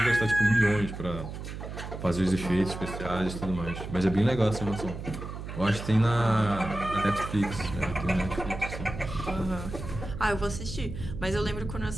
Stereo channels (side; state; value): right; noise; hum, 8 dB below the sound